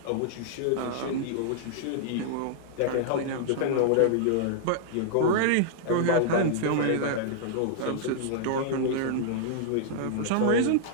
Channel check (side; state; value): both; different; correlation -0.01